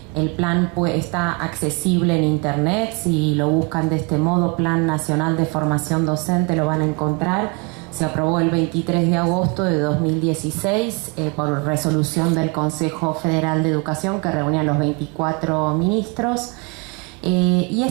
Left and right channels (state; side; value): quieter; left; 31.1 dB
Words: El plan está accesible en internet. Si lo buscan de este modo, Plan Nacional de Formación Docente, lo van a encontrar. Se aprobó el 23 de agosto de 2016 por resolución del Consejo Federal de Educación, que reunía a los 24 ministros. Y